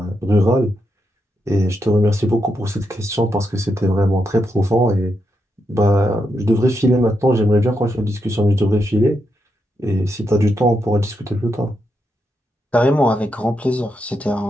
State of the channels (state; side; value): normal; both; correlation 0.83